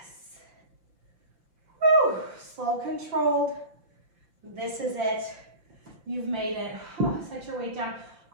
Woo. Slow, controlled. This is it. You've made it. Oh, set your weight down.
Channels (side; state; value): left; late; 5.8 ms